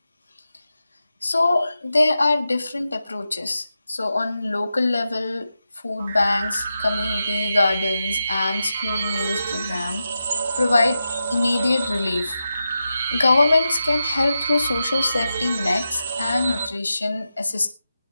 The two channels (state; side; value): inverted; both; correlation -0.90